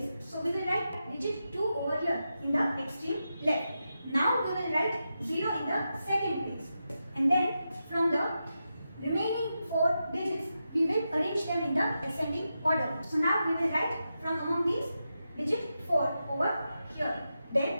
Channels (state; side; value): inverted; both; correlation -0.89